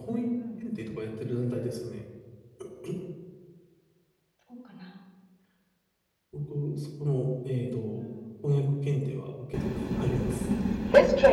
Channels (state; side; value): identical; both; correlation 1.00